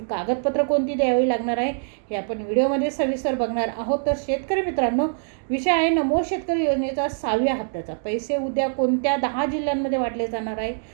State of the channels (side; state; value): left; silent; digital silence